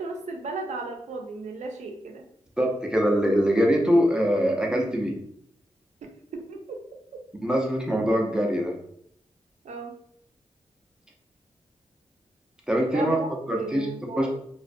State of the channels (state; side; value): normal; both; correlation 0.86